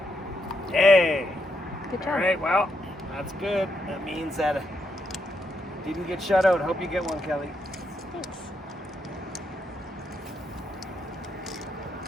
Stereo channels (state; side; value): normal; both; correlation 0.79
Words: Yay! Good job. All right, well, that's good. That means that it didn't get shut out. Hope you get one, Kelly. Thanks.